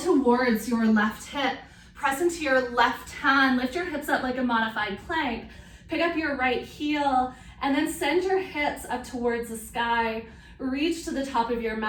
your left hip, press into your left hand, lift your hips up like a modified plank, pick up your right heel, and then send your hips up towards the sky. Reach to the top of your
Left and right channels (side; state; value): both; identical; correlation 1.00